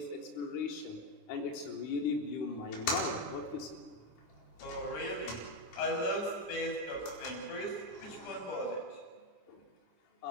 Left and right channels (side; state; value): right; late; 10 ms